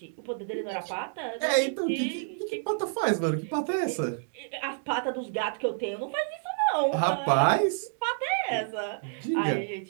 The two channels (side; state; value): left; silent; digital silence